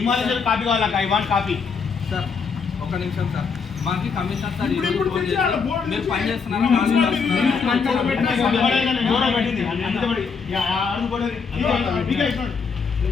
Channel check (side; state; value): right; quieter; 5.5 dB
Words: కావాలా? I want copy. సార్ ఒక నిమిషం సార్, మాకు కమిషనర్ సార్ మీరు పని చేస్తున్నారా?